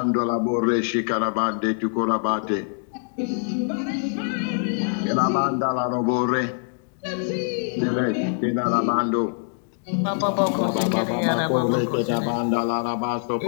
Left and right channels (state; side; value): silent; right; digital silence